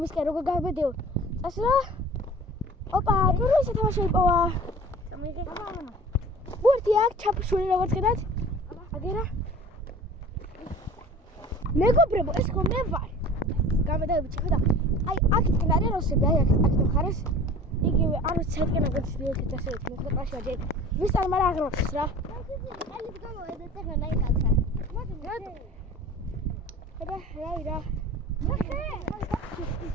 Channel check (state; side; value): normal; both; correlation 0.42